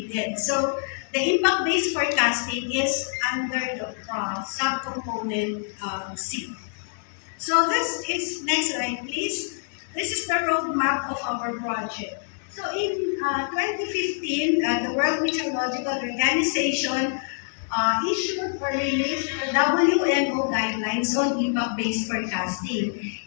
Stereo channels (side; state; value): right; silent; digital silence